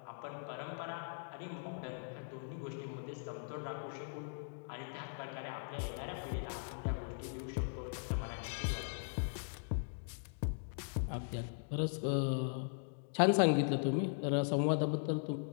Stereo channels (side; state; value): right; silent; digital silence